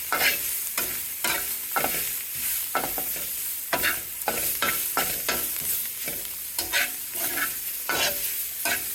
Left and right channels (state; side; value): identical; both; correlation 1.00